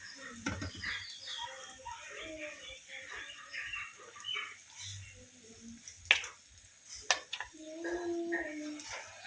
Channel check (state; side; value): identical; both; correlation 1.00